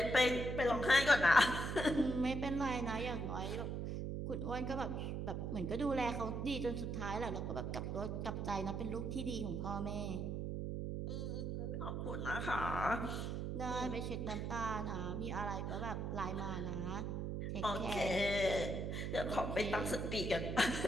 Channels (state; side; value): noise; right; hum, 2 dB below the sound